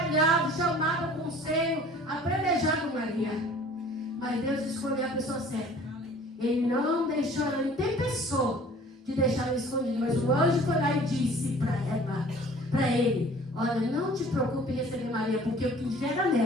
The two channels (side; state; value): both; normal; correlation 0.49